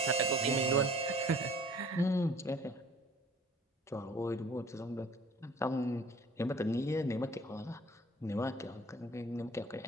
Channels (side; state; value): both; normal; correlation 0.50